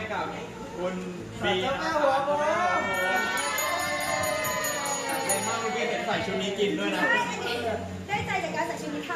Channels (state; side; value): identical; both; correlation 1.00